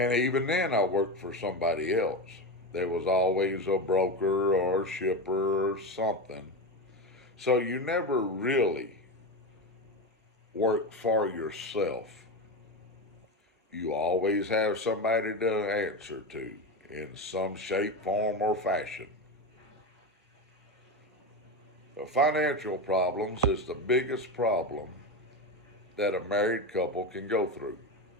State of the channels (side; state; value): both; normal; correlation 0.18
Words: even then, I worked for somebody else. There was always a broker or a shipper or something. So you never really work for yourself. You always have somebody to answer to in some shape, form, or fashion. The financial problems is the biggest problem that a married couple can go through.